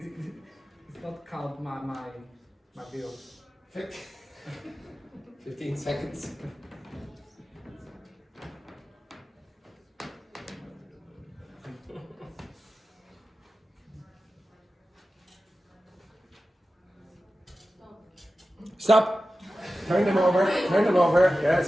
not count my bill. 15 seconds. Stop. Turn them over. Turn them over.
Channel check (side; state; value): both; normal; correlation 0.94